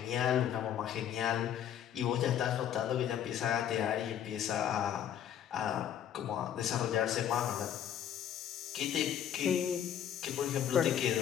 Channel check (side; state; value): right; quieter; 9.8 dB